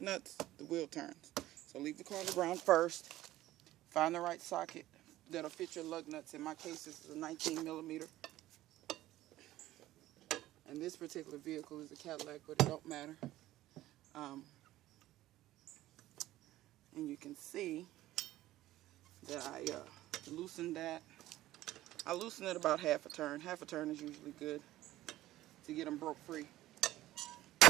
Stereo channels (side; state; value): left; quieter; 15.3 dB